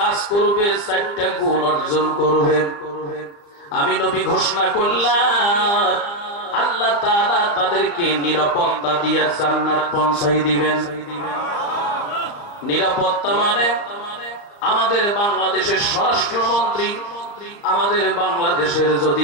করবে, 4টা গুণ অর্জন করবে, আমি নবী ঘোষণা করলাম আল্লাহ তাআলা তাদেরকে নিরাপত্তা দিয়ে জান্নাত পৌঁছাই দিবেন। নিরাপত্তা মানে আমাদের বাংলাদেশের স্বরাষ্ট্রমন্ত্রী, আমাদের বাংলাদেশের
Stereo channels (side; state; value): right; late; 34 ms